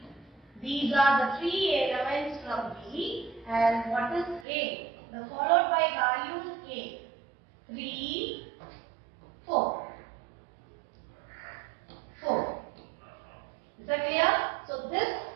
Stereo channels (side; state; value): left; drops out; at 4.5 s